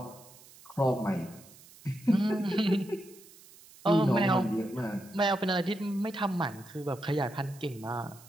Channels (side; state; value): right; noise; hiss, 22 dB below the sound